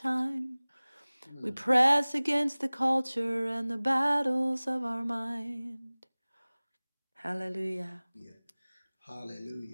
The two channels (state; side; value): inverted; both; correlation -1.00